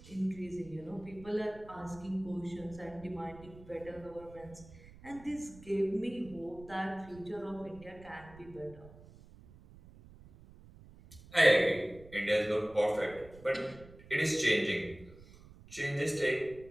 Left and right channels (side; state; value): right; noise; rumble, 20 dB below the sound